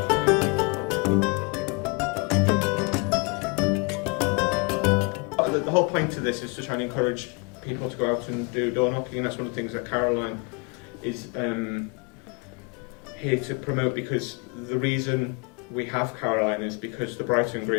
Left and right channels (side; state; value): right; quieter; 31.8 dB